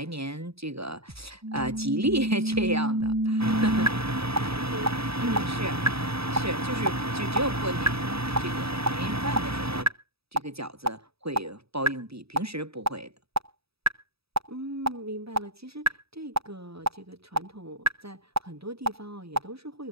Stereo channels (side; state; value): left; late; 0.77 ms